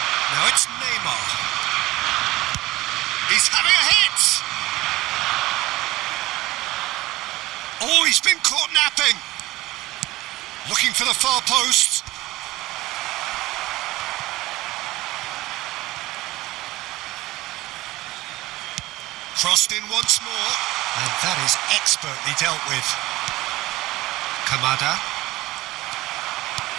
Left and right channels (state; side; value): quieter; left; 18.3 dB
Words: Now it's Neymar. He's having a hit! Oh, he's been caught napping. Looking for the far post. Crossed in once more. And that is expertly dealt with. Kamada.